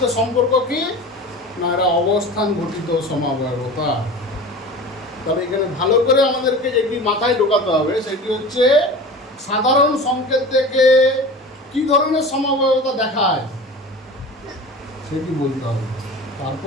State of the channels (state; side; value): normal; both; correlation 0.35